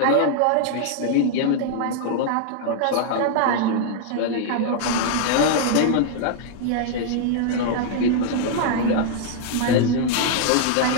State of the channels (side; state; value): both; different; correlation -0.01